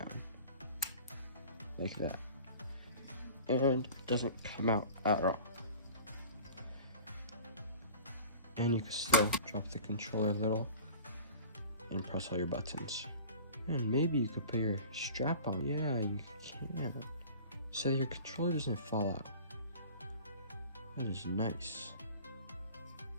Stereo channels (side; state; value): both; inverted; correlation -0.41